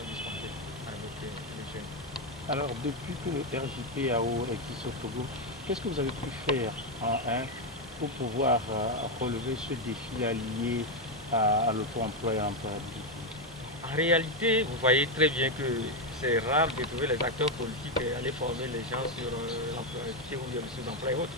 dispensés avec les jeunes. Alors depuis que le RJPAO existe au Togo, qu'est-ce que vous avez pu faire pour pouvoir relever ce défi lié à l'auto-emploi et à l'employabilité? En réalité, vous voyez très bien que c'est rare de trouver les acteurs politiques et aller former les gens sur l'employabilité ou bien sur l'emploi et autres.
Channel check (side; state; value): both; normal; correlation 0.06